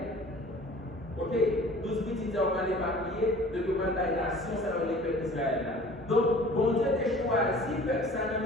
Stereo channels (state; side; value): normal; both; correlation 0.47